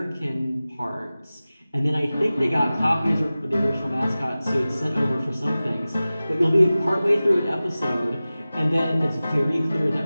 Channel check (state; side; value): inverted; both; correlation -0.97